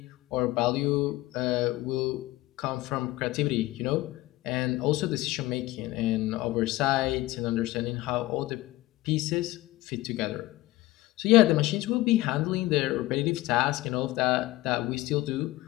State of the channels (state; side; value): quieter; right; 18.2 dB